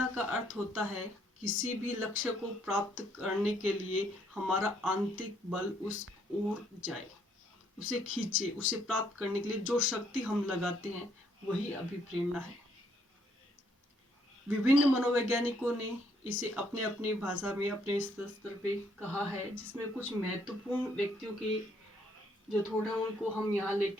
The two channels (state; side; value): normal; both; correlation 0.69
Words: का अर्थ होता है किसी भी लक्ष्य को प्राप्त करने के लिए हमारा आंतरिक बल उस ओर जाए, उसे खींचे, उसे प्राप्त करने के लिए जो शक्ति हम लगाते हैं वही अभिप्रेरणा है। विभिन्न मनोवैज्ञानिकों ने इसे अपने अपनी भाषा में अपने स्तर पे कहा है, जिसमें कुछ महत्वपूर्ण व्यक्तियों के जो थोड़ा उनको हम यहाँ